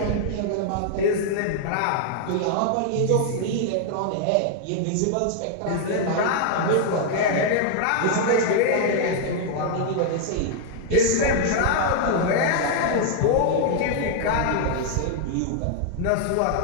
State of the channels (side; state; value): both; different; correlation 0.00